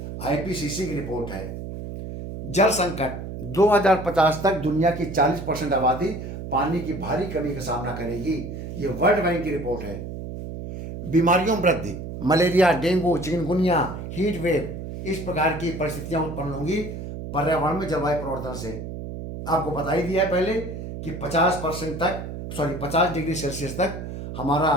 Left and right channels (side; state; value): right; noise; hum, 8 dB below the sound